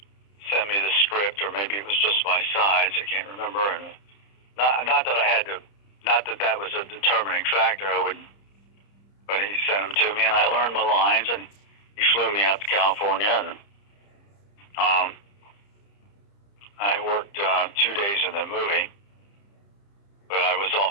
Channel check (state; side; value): late; right; 30 ms